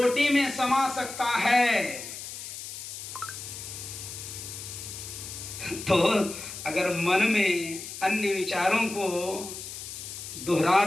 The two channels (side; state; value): left; noise; hiss, 10 dB below the sound